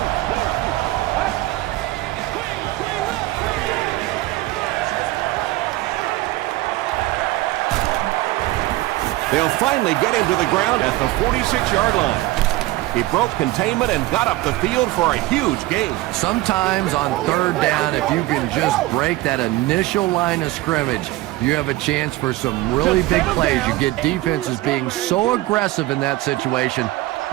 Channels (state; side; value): quieter; left; 18.1 dB